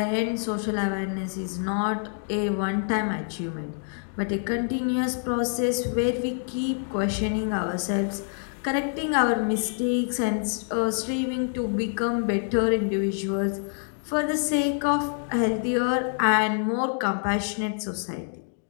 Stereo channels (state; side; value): silent; right; 58 dB below the other